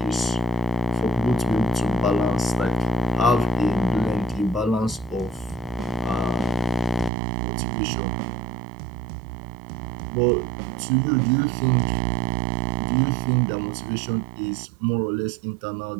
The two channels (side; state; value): left; drops out; at 7.1 s